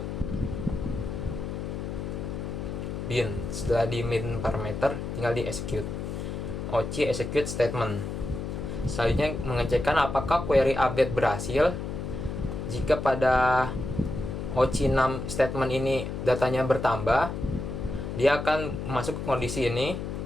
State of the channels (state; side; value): noise; left; hum, 5 dB below the sound